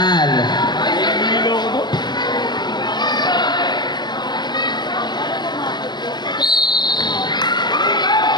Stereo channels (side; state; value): right; late; 0.21 ms